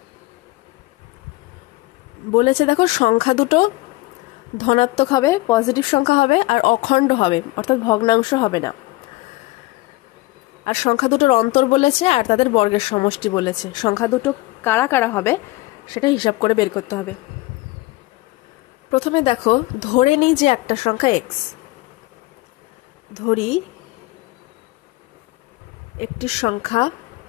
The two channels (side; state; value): right; quieter; 20.8 dB